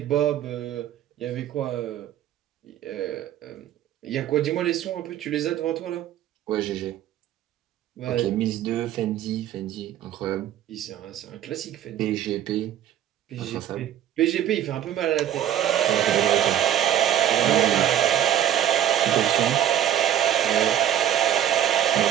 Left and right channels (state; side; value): quieter; left; 11.0 dB